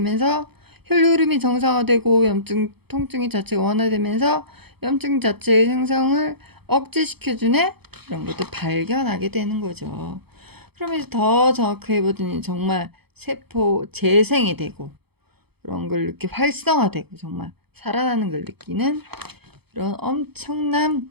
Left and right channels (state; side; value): late; left; 0.97 ms